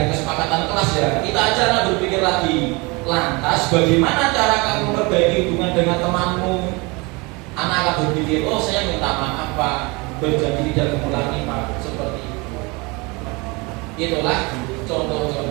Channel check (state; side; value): quieter; left; 26.7 dB